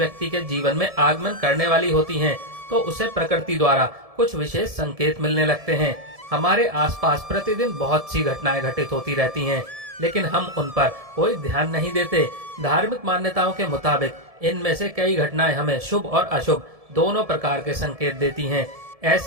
के जीवन में आगमन करने वाली होती हैं, तो उसे प्रकृति द्वारा कुछ विशेष संकेत मिलने लगते हैं। हमारे आसपास प्रतिदिन बहुत सी घटनाएं घटित होती रहती हैं, लेकिन हम उन पर कोई ध्यान नहीं देते। धार्मिक मान्यताओं के मुताबिक इनमें से कई घटनाएं हमें शुभ और अशुभ दोनों प्रकार के संकेत देती हैं।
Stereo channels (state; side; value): late; left; 1.7 ms